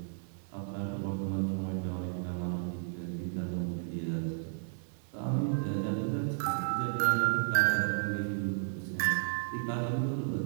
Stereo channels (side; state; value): left; silent; digital silence